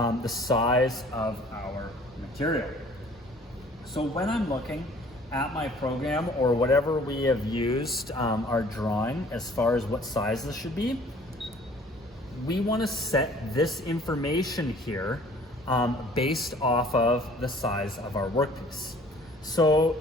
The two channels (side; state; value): both; normal; correlation 0.53